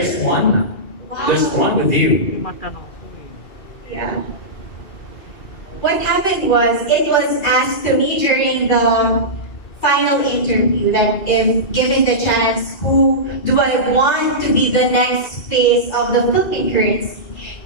one. Wow. There's one with you. Yeah. What happened was, it was asked to me during the final interview that if given the chance, who do I want to be the next face of the Philippine currency?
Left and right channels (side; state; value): right; late; 2.4 ms